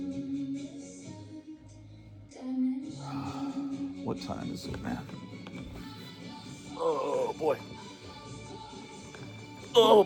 What time is it, man? Oh, boy. Oh,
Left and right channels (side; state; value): both; identical; correlation 1.00